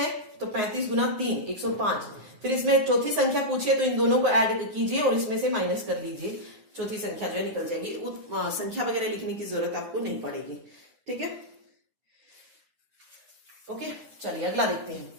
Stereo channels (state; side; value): late; left; 9.5 ms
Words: तो 35 गुना 3 105। फिर इसमें चौथी संख्या पूछिए तो इन दोनों को ऐड कीजिए और इसमें से माइनस कर लीजिए, चौथी संख्या जो है निकल जाएगी। संख्या वगैरह लिखने की जरूरत आपको नहीं पड़ेगी। ठीक है, ओके, चलिए अगला देखते हैं।